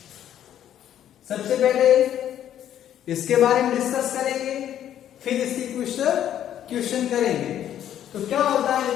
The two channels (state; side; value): quieter; right; 10.8 dB